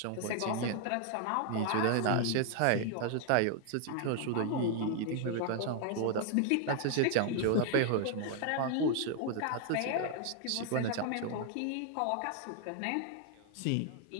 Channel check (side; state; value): both; different; correlation 0.00